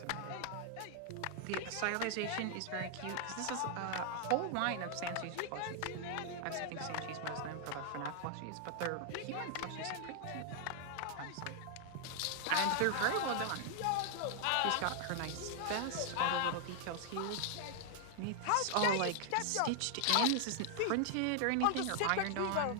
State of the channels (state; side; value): different; both; correlation 0.00